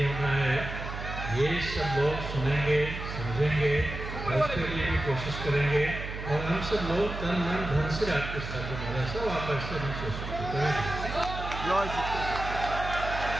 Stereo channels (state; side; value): noise; right; hum, 7 dB below the sound